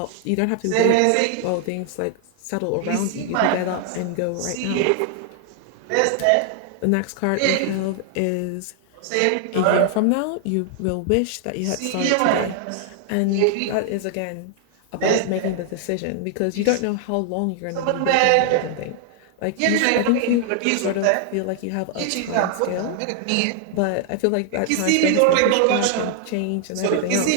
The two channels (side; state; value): both; different; correlation 0.00